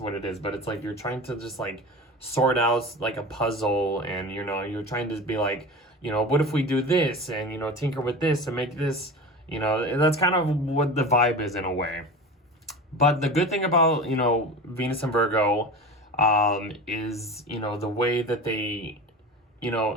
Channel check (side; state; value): both; normal; correlation 0.31